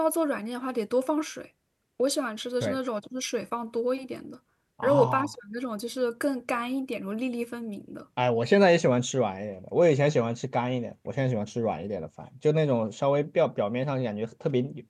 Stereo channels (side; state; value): both; identical; correlation 1.00